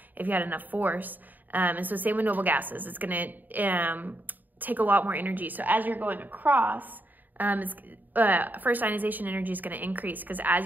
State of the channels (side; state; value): left; late; 0.087 ms